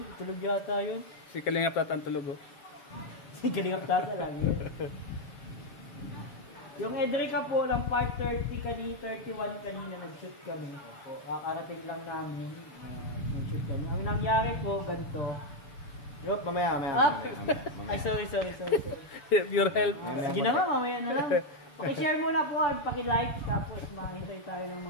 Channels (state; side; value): late; right; 6.9 ms